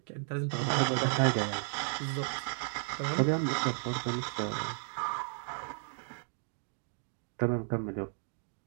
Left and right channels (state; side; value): silent; left; 55 dB below the other